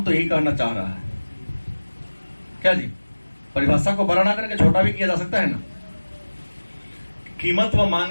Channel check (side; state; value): both; inverted; correlation -1.00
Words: तो यही कहना चाह रहा है क्या जी? परिभाषा को बड़ा ना करके छोटा भी किया जा सकता है ना। कीमत व